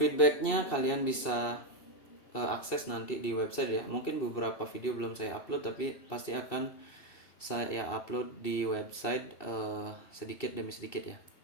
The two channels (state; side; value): late; right; 2.7 ms